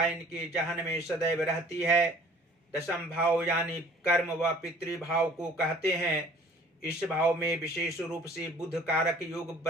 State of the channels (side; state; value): both; normal; correlation 0.52